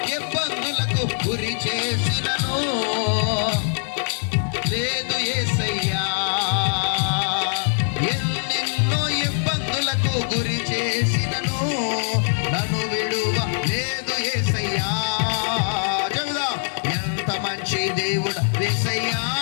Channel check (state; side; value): silent; right; digital silence